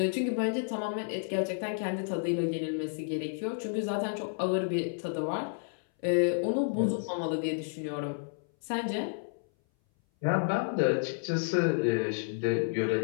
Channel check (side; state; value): right; silent; 57 dB below the other